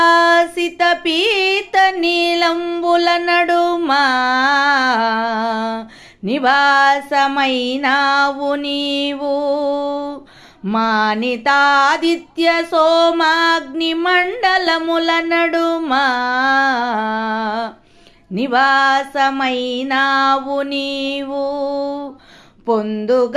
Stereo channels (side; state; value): both; identical; correlation 1.00